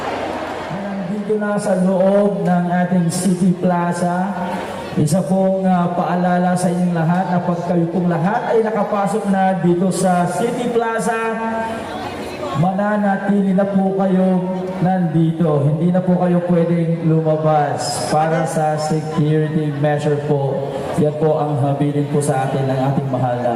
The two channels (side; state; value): both; identical; correlation 1.00